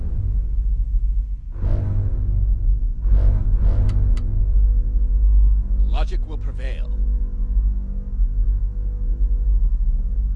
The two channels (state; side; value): identical; both; correlation 1.00